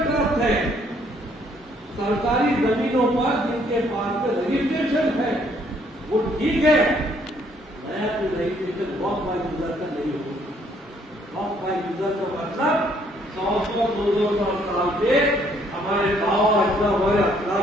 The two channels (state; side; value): normal; both; correlation 0.66